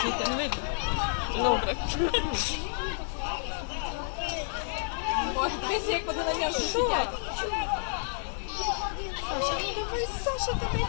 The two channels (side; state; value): right; silent; 58 dB below the other